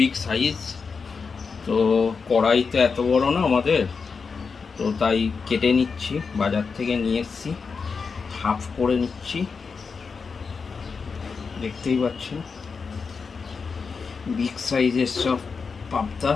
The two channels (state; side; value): quieter; right; 5.2 dB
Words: সাইজ। তো কড়াই তো এত বড় না আমাদের, তো তাই কেটে নিচ্ছি, বাজার থেকে নিয়ে এসেছি, হাফ করে নিচ্ছি। দেখতেই পাচ্ছেন বিগ সাইজের সব পাবদা,